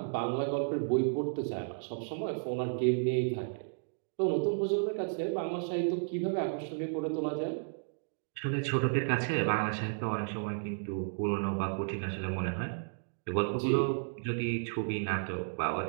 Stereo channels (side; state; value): left; silent; digital silence